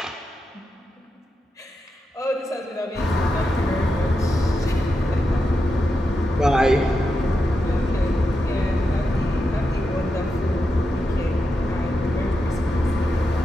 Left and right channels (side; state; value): both; normal; correlation 0.87